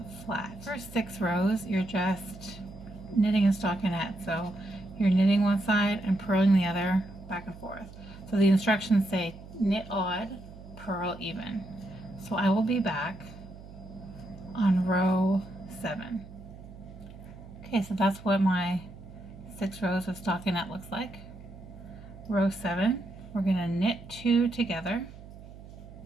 flat. First 6 rows, you're just knitting a stockinette. So you're knitting one side and purling the other back and forth. So the instructions say knit odd, purl even. So I will be back on row 7. Okay, so that's what my 6 rows of stockinette looks like. Row 7, we're going to knit 2 together,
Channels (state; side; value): noise; right; hum, 16 dB below the sound